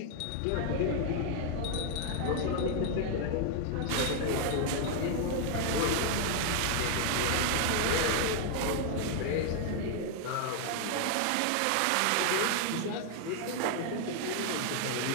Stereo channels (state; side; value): different; both; correlation 0.00